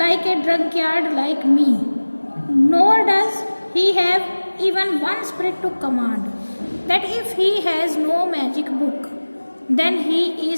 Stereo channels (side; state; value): both; inverted; correlation -1.00